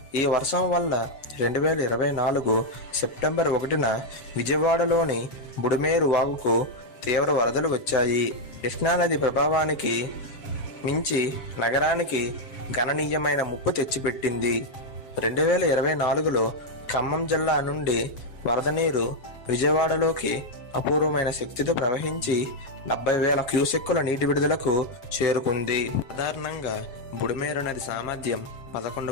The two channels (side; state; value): right; late; 7.4 ms